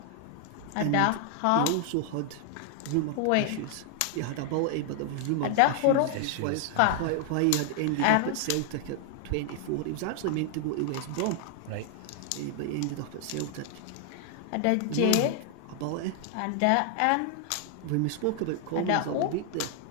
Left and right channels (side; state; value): both; different; correlation 0.00